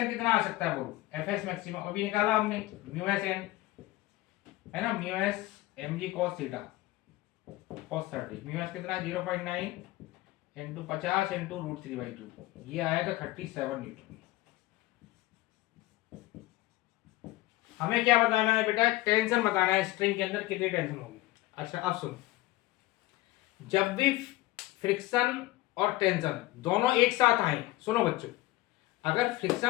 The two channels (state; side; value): quieter; right; 18.4 dB